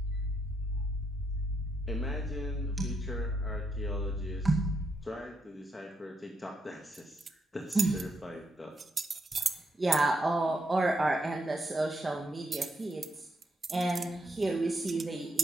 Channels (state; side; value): normal; both; correlation 0.79